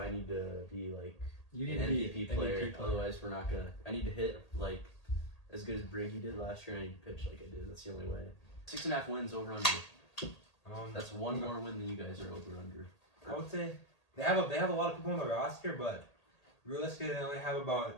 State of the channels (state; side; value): late; right; 1.8 ms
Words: need to be like you need an to be MVP an player. MVP player. Otherwise, we're not gonna. I need to hit like as good as Briggy did last year. And I need to pitch like I did. That's the only way. 6.5 wins over under. That's one more win than you guys are over under. I would say they have a lot of people on the roster, but realistically, they only have about